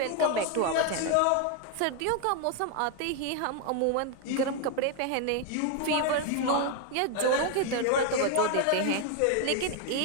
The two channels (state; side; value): different; both; correlation 0.01